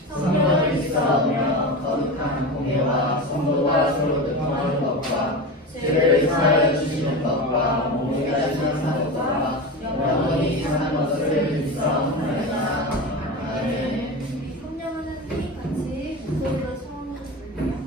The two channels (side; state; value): both; normal; correlation 0.24